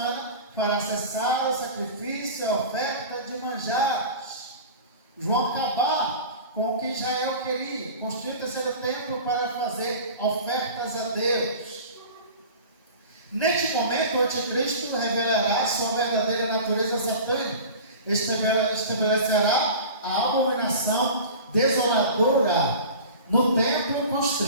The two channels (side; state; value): both; inverted; correlation -0.37